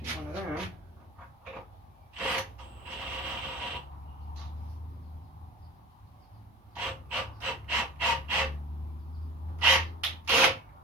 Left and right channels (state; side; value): normal; both; correlation 0.37